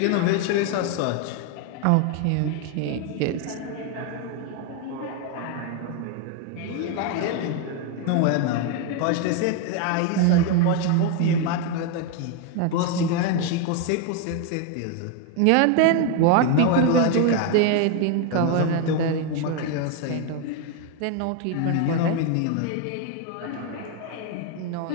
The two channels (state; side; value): different; both; correlation 0.01